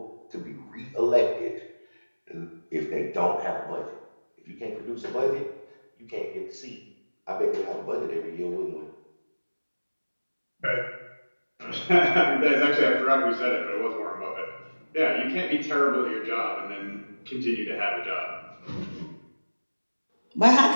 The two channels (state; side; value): inverted; both; correlation -1.00